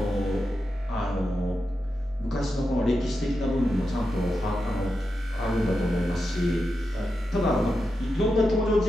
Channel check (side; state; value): both; normal; correlation 0.88